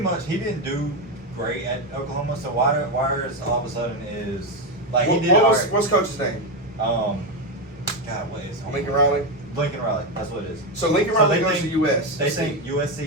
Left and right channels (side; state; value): both; normal; correlation 0.10